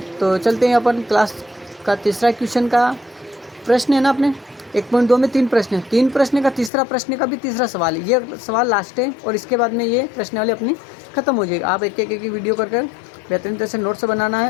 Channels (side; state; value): right; drops out; at 6.7 s